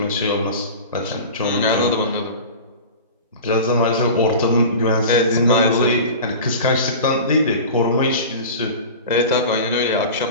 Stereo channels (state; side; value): inverted; both; correlation -0.34